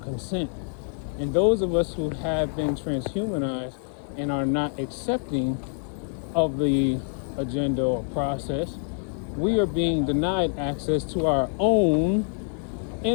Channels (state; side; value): silent; right; 57 dB below the other